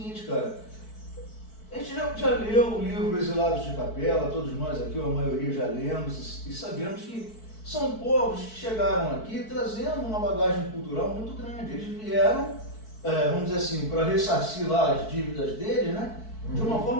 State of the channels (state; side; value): late; right; 4.6 ms